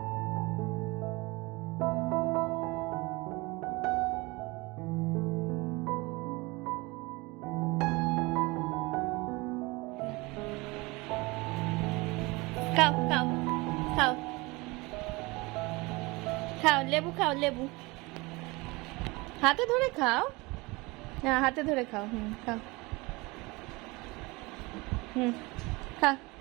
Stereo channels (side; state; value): left; quieter; 24.2 dB